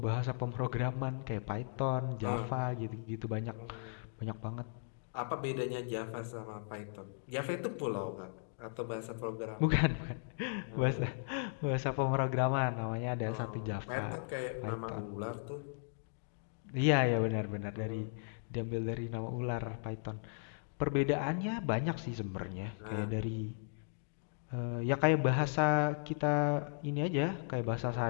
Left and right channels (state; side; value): silent; right; digital silence